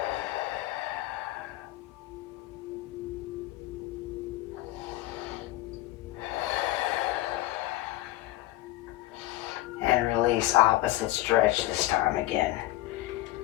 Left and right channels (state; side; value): quieter; right; 16.8 dB